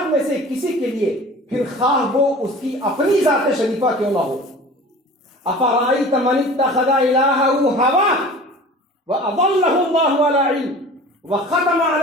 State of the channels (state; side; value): normal; both; correlation 0.41